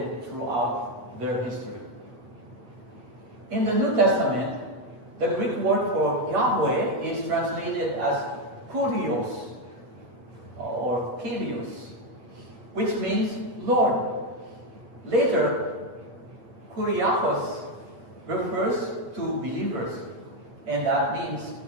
throughout their history. In the New Testament, the Greek word for Yahweh is translated as Kurios or Kyrios, which means Lord. Later, Kuriakos refers to believers, and that means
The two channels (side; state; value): left; late; 8.5 ms